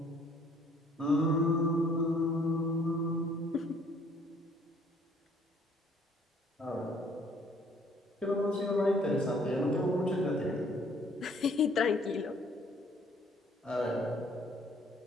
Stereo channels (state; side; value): normal; both; correlation 0.60